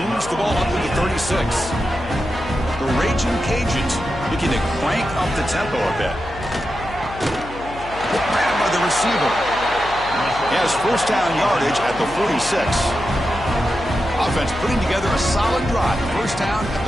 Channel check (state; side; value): noise; left; hum, 14 dB below the sound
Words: moves the ball up to the 36. The Raging Cajuns looking to crank up the tempo a bit. Grabbed by the receiver. He has 1st down yardage at the 46. Offense putting together a solid drive. 1st down at